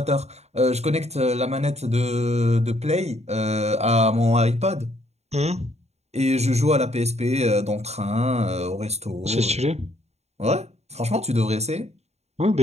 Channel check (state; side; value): late; left; 0.31 ms